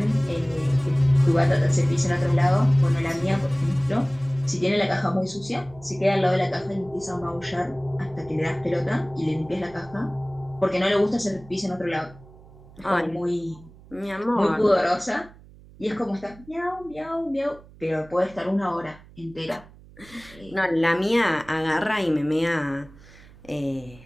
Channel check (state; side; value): noise; right; hum, 22 dB below the sound